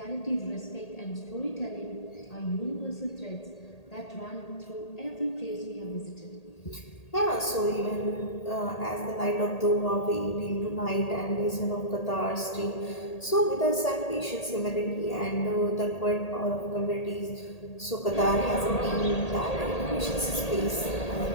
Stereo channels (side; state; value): right; late; 1.8 ms